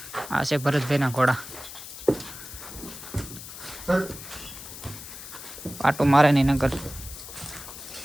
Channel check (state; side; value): noise; left; hiss, 12 dB below the sound